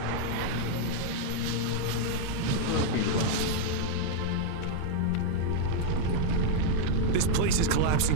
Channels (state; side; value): different; both; correlation -0.01